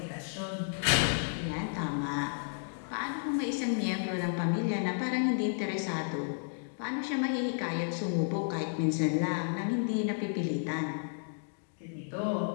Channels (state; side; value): silent; right; digital silence